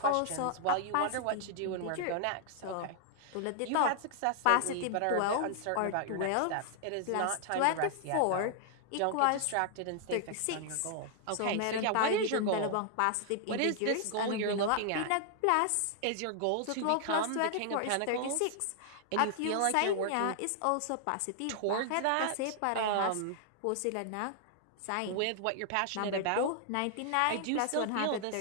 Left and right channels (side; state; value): both; different; correlation 0.00